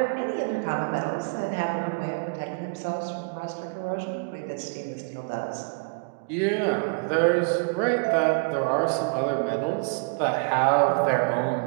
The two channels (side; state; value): left; quieter; 35.5 dB